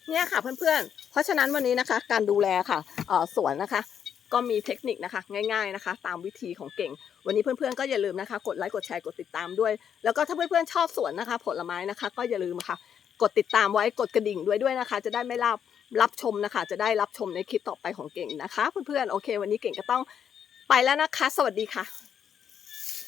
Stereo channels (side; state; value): right; quieter; 8.4 dB